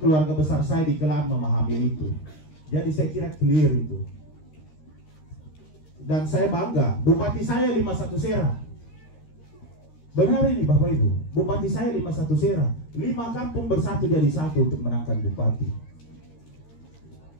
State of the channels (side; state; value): right; late; 13 ms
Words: besar saya di Kelaan memahami itu. Jadi saya kira clear itu. Dan saya bangga, bupati saya 51 Sera. Benar ini Bapak Ibu, bupati saya 51 Sera. 5 kampung bersatu jadi satu untuk menangkan bupati.